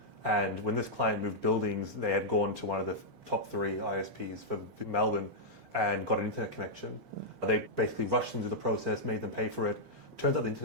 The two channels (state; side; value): late; left; 6.9 ms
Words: And when this client moved buildings, they had gone to one of the top 3 ISPs for Melbourne and got an internet connection. They basically rushed them through the process, made them pay for it. Turns out the